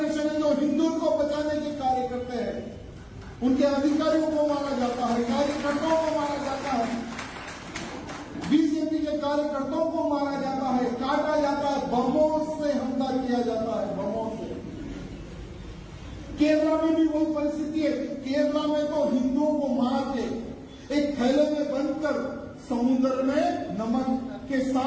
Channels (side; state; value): both; identical; correlation 1.00